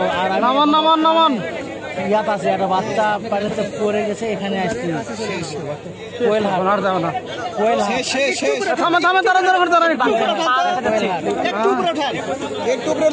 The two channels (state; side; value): identical; both; correlation 1.00